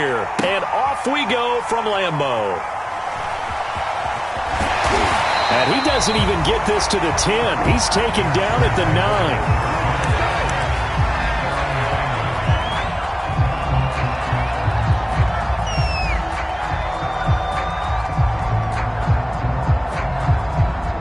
and off we go from Lambeau. And he doesn't even get this to the 10. He's taken down at the 9.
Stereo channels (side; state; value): both; identical; correlation 1.00